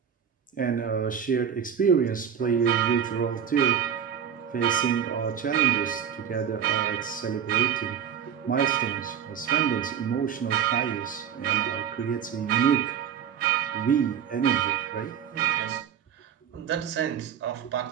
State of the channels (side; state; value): left; quieter; 8.3 dB